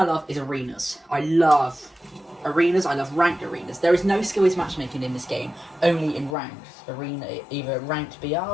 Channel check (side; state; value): right; drops out; at 6.4 s